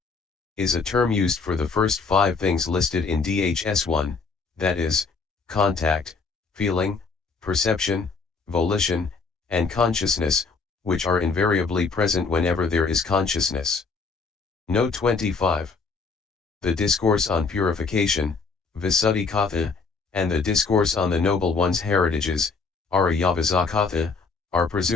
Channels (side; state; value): right; quieter; 4.6 dB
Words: is a term used for the first 5 things listed in DHS1, that is, contact, feeling, perception, volition, and consciousness, which are invariably present whenever there is consciousness. Note 25. The discourse on purification, Vism-mhþ, and the discourse on the Noble One's heritages, Vism-mhþ, are